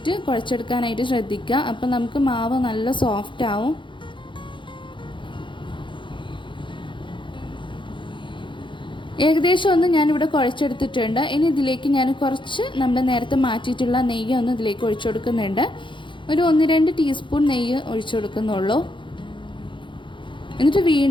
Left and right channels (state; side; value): late; right; 0.23 ms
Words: കുഴച്ചെടുക്കാനായിട്ട് ശ്രദ്ധിക്കുക. അപ്പം നമുക്ക് മാവ് നല്ല സോഫ്റ്റ് ആവും. ഏകദേശം ഒന്ന് ഞാനിവിടെ കുഴച്ചെടുത്തിട്ടുണ്ട്. ഇനി ഇതിലേക്ക് ഞാൻ കുറച്ച് നമ്മൾ നേരത്തെ മാറ്റിയിട്ടുള്ള നെയ്യ് ഒന്ന് ഇതിലേക്ക് ഒഴിച്ചു കൊടുക്കുന്നുണ്ട്. ഒരു 1-2 ടീസ്പൂൺ നെയ്യ് ഒഴിച്ചു കൊടുക്കുന്നുള്ളൂ. എന്നിട്ട്